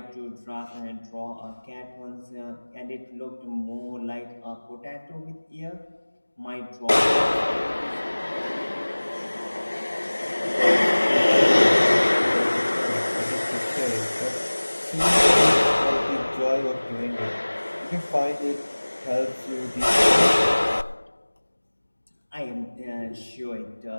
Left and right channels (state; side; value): inverted; both; correlation -1.00